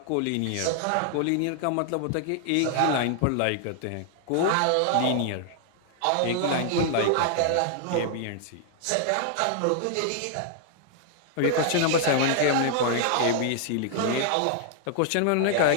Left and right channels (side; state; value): both; different; correlation 0.00